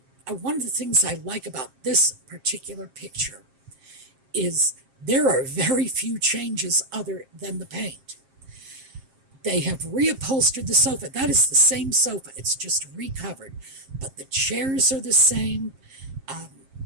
one of the things I like about this particular picture is there are very few changes other than the paint. They have reupholstered the sofa. That is the same sofa. It's just recovered. But the chairs are the same.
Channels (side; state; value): left; late; 7.5 ms